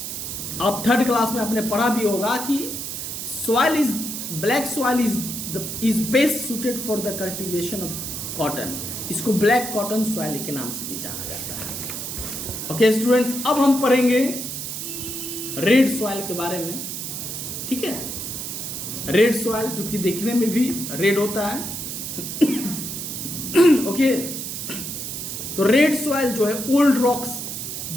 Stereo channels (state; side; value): noise; right; hiss, 6 dB below the sound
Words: आप 3rd क्लास में आपने पढ़ा भी होगा कि black soil is best suited for the cultivation of cotton. इसको ब्लैक कॉटन सॉइल के नाम से भी जाना जाता है। ओके स्टूडेंट्स, अब हम पढ़ेंगे रेड सॉइल के बारे में। ठीक है, रेड सॉइल जो कि देखने में भी रेड होता है। ओके, तो रेड सॉइल जो है ओल्ड रॉक्स,